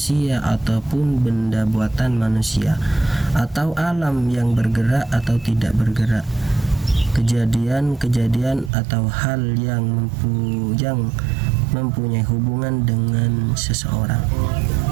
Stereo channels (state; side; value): drops out; left; at 8.7 s